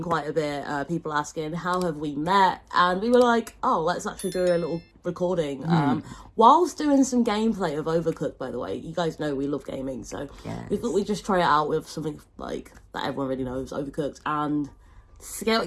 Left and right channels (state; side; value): identical; both; correlation 1.00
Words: quite a bit. People asking, how have we met? And we were like, oh, let's actually do a little recording. Whilst doing some gameplay of Overcooked, by the way. You guys know we love gaming, so we thought we'd just try it out with something like that everyone really knows, Overcooked, and see how